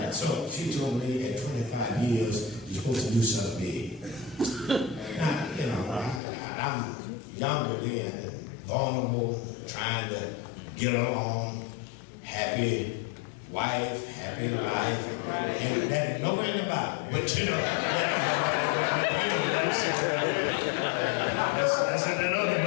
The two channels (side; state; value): right; drops out; at 6.2 s